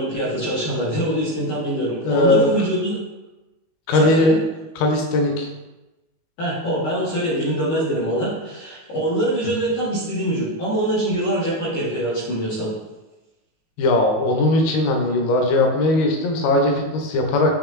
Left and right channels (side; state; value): right; late; 19 ms